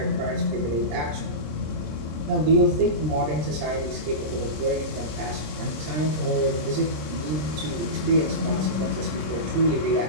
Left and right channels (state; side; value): late; left; 26 ms